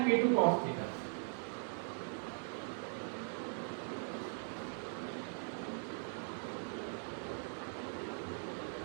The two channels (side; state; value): left; silent; 51 dB below the other